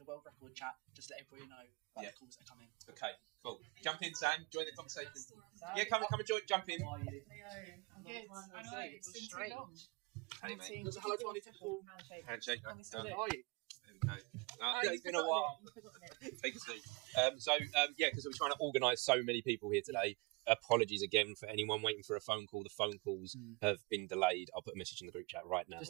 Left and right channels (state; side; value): quieter; left; 27.2 dB